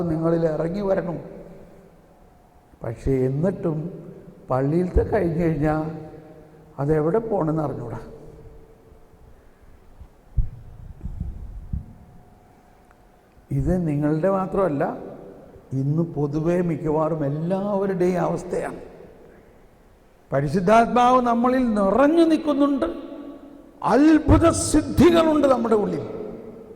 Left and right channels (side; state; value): both; identical; correlation 1.00